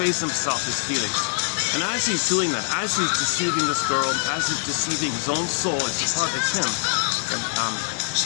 himself, his feelings. And as he's doing that, as he's deceiving this girl, as he's deceiving his own soul, it's him.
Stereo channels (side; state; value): right; silent; digital silence